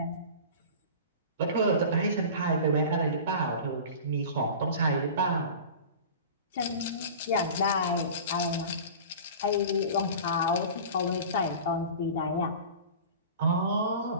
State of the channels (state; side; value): inverted; both; correlation -0.36